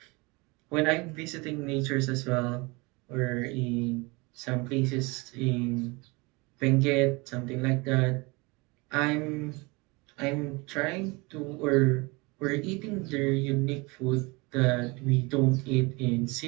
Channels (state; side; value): quieter; left; 26.2 dB